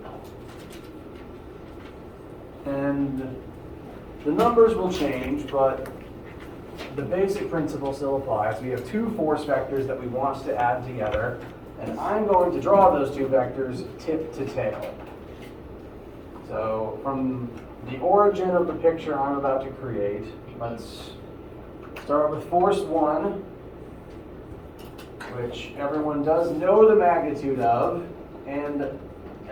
And the numbers will change, but the basic principle still applies. We have 2 force vectors that we want to add together, and I'm going to draw those 2 vectors tip to tail. So from the origin of the picture I'm about to create, let's start with force 1, which everyone does know the magnitude of, and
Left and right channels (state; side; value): identical; both; correlation 1.00